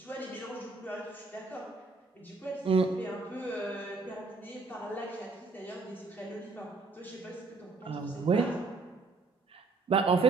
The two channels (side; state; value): left; quieter; 3.6 dB